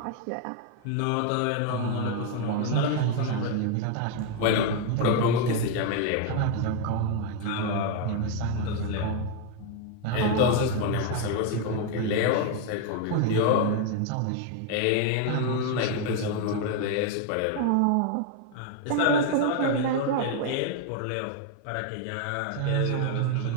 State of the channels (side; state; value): both; different; correlation 0.01